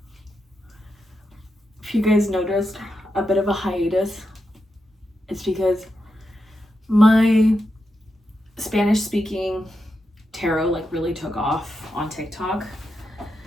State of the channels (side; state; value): both; normal; correlation 0.86